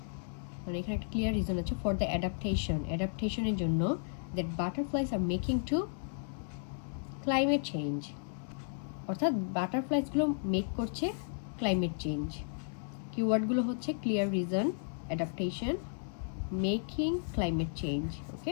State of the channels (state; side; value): silent; right; digital silence